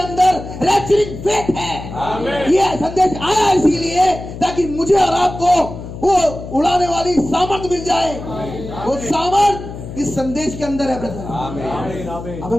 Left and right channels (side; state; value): left; noise; hum, 11 dB below the sound